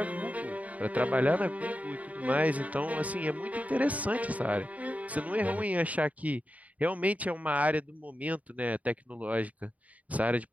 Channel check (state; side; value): late; left; 0.071 ms